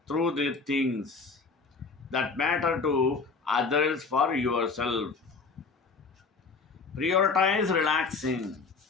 through the things that matter to others for yourself. Prioritize relaxing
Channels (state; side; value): quieter; right; 4.5 dB